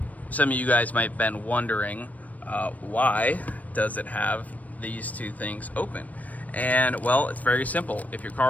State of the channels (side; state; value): right; late; 0.073 ms